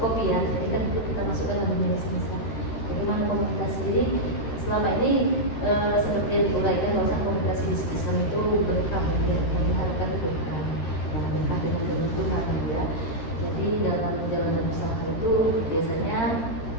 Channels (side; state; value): right; late; 13 ms